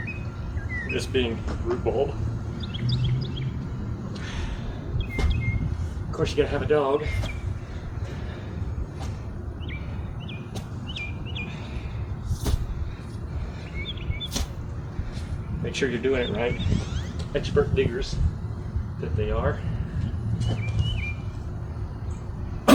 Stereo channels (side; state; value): both; identical; correlation 1.00